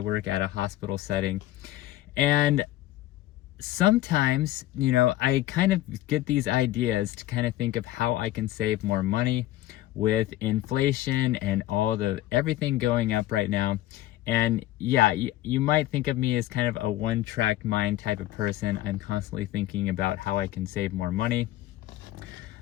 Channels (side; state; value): right; quieter; 15.4 dB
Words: at a hospital setting, and sometimes, I kind of get these ideas to kind of think of how I can save more money with inflation and everything going up right now. And yeah, you might think of me as kind of a one-track mind type of person. I'm constantly thinking about how I can save more money.